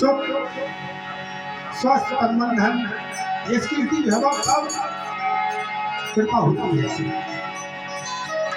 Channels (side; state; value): both; identical; correlation 1.00